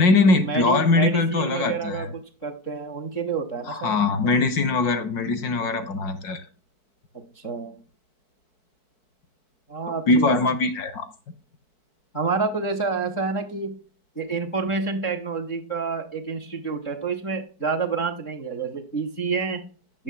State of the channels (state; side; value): late; right; 4.6 ms